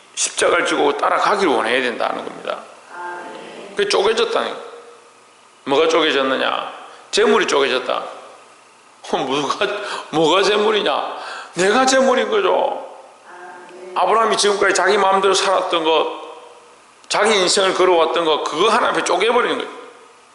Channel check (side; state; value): both; identical; correlation 1.00